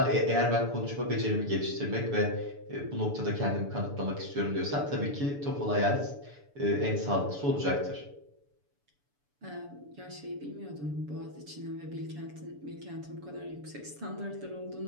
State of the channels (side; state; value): left; late; 6.9 ms